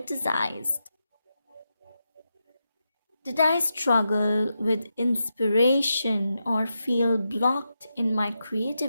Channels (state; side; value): inverted; both; correlation -0.87